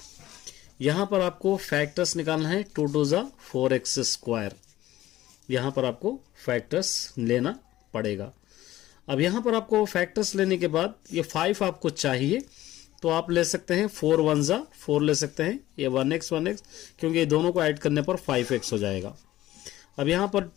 यहां पर आपको फैक्टर्स निकालना है, 2 × 4x², यहां पर आपको फैक्टर्स लेना पड़ेगा। अब यहां पर आपको फैक्टर्स लेने के बाद ये 5 आपको चाहिए तो आप ले सकते हैं 4 × 1 = 4 ले सकते हैं, ये 1x क्योंकि ये दोनों को ऐड करने पर 5x हो जाएगा। अब यहां पर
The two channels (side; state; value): right; quieter; 15.1 dB